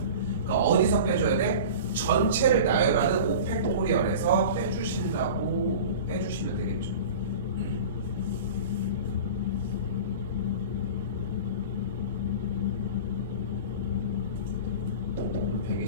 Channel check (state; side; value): inverted; both; correlation -0.36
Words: 그러니까 어디서 빼줘야 돼? 전체를 나열하는 오펙토리얼에서 빼주신다고 빼주시면 되겠죠.